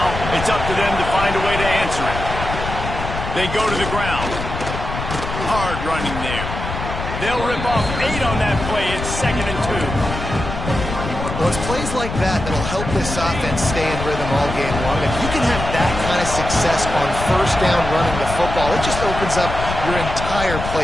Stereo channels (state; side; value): noise; left; rumble, 6 dB below the sound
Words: it's up to them to find a way to answer it. They go to the ground. Hard running there. They'll rip off 8 on that play. It's 2nd and 2. Well, it's plays like that that'll help this offense stay in rhythm all game long. If you can have that kind of success on 1st down running the football, it just opens up your entire